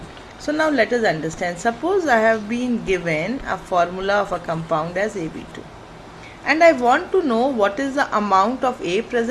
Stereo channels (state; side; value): identical; both; correlation 1.00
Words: So now let us understand. Suppose I have been given a formula of a compound as AB2, and I want to know what is the amount of A